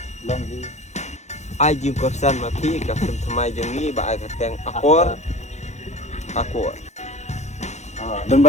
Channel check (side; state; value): right; late; 0.33 ms